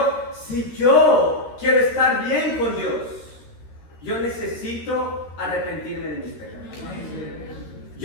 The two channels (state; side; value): late; right; 13 ms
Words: si yo quiero estar bien con Dios, yo necesito arrepentirme de mis pecados.